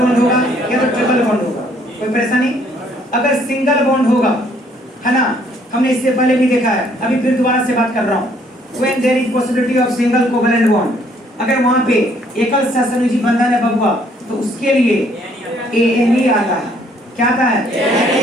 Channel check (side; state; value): both; normal; correlation 0.64